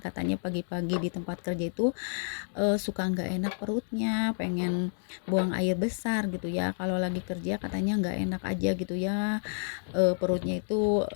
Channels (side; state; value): right; silent; digital silence